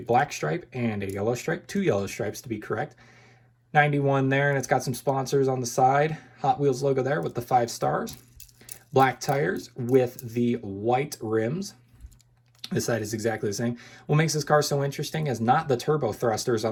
stripe and a yellow stripe, 2 yellow stripes to be correct. 91 there, and it's got some sponsors on the side. Hot Wheels logo there with the 5 stars. Black tires with the white rims. This side is exactly the same. What makes this car so interesting is not the turbo thrusters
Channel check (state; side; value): identical; both; correlation 1.00